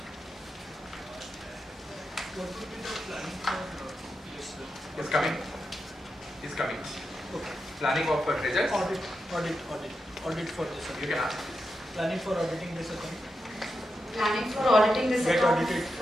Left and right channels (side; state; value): both; normal; correlation 0.88